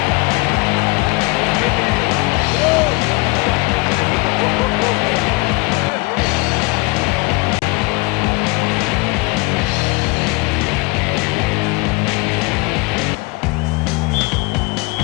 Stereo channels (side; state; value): right; quieter; 25.6 dB